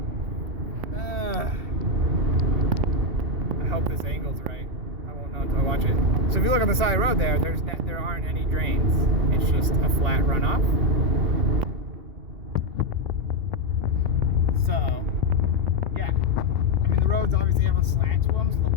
I hope this angle's right. I won't know until I watch it. So if you look on the side of the road there aren't any drains. It's just a flat runoff. So, yeah. I mean, the roads obviously have a slant to them, so the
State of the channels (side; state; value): left; late; 2.7 ms